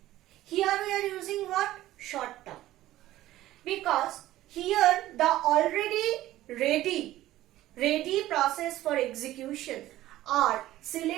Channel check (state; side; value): quieter; left; 15.0 dB